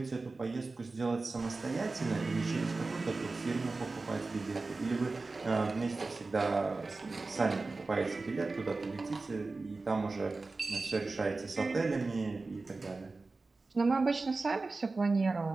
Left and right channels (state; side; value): quieter; left; 3.6 dB